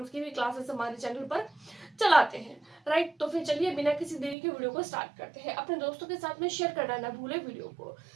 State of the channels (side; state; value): left; drops out; at 4.4 s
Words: की भी क्लासेस हमारे चैनल पर चलाते हैं। राइट, तो फिर चलिए बिना किसी देरी के वीडियो को स्टार्ट करते हैं। अपने दोस्तों के साथ में शेयर करना ना भूले वीडियो को।